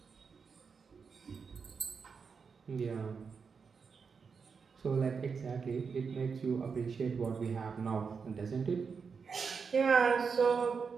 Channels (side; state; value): left; quieter; 5.6 dB